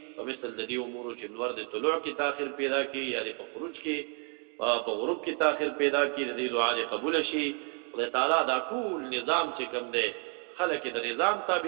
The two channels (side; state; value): left; quieter; 39.1 dB